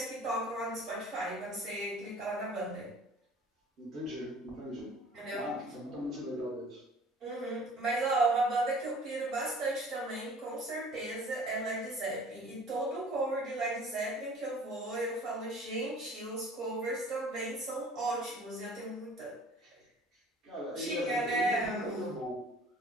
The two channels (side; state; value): both; normal; correlation 0.49